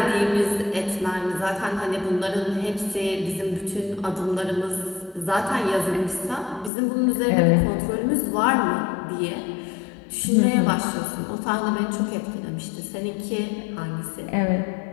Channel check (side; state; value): right; drops out; at 6.7 s